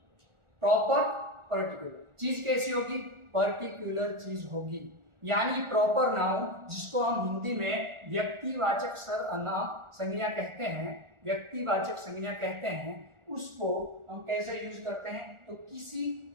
प्रॉपर पर्टिकुलर चीज कैसी होगी? पर्टिकुलर चीज होगी। यानी प्रॉपर नाउन जिसको हम हिंदी में व्यक्तिवाचक सर्वनाम संज्ञा कहते हैं, व्यक्तिवाचक संज्ञा कहते हैं, उसको हम कैसे यूज करते हैं? तो किसी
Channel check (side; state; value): left; late; 1.4 ms